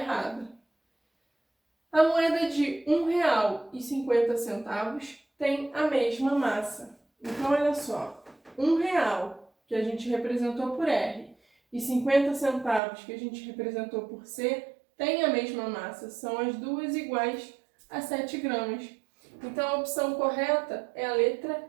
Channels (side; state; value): left; drops out; at 12.8 s